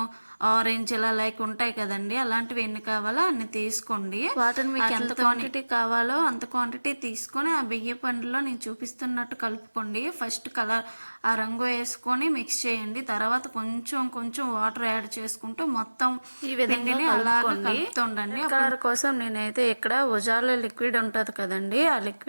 ఆరెంజ్ ఇలా లైక్ ఉంటాయి కదండి, అలాంటివి ఎన్ని కావాలో అన్ని తీసుకోండి. వాటిని మీకు ఎంత క్వాంటిటీ కావాలో అంత క్వాంటిటీ తీసుకొని ఆ బియ్య పండులో నేను చూపిస్తున్నట్టు కలుపుకోండి. ఫస్ట్ కలర్ ఆ రంగు వేసుకొని మిక్స్ చేయండి. తర్వాత కొంచెం కొంచెం వాటర్ యాడ్ చేసుకుంటూ మొత్తం ఈ విధంగా అలాగే కలుపుతుండండి. కలర్ కోసం నేనైతే ఇక్కడ ఉజాల లిక్విడ్ ఉంటుంది కదండి, ఆ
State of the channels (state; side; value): inverted; both; correlation -1.00